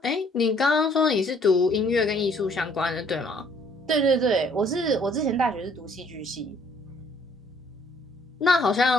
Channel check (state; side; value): normal; both; correlation 0.62